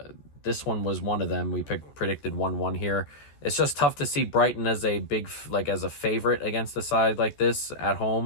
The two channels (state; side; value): late; right; 14 ms